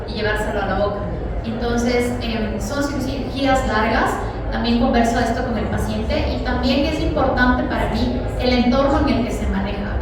y llevárselo a la boca. Entonces, son cirugías largas. También converso esto con el paciente, y también es importante para mí el entorno en el que se maneja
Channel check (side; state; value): both; identical; correlation 1.00